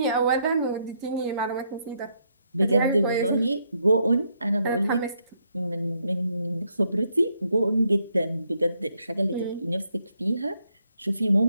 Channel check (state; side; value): inverted; both; correlation -0.75